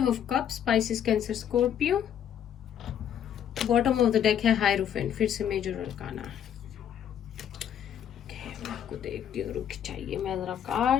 of cups, Pisces, Cancer, Scorpio. Bottom of the deck है हायरोफेंट, फिर से मेजर अरकाना। मैं आपको देखती हूँ, रुक चाहिए मैं जरा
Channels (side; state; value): right; quieter; 9.4 dB